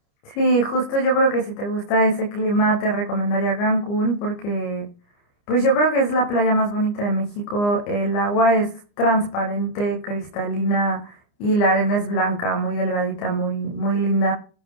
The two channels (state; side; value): late; right; 29 ms